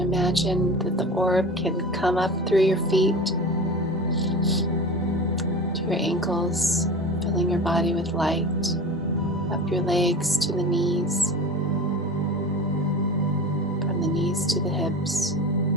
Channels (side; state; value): both; normal; correlation 0.32